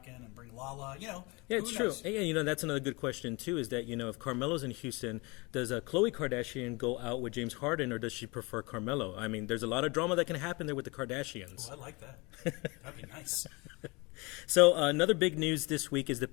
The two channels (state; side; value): quieter; right; 26.7 dB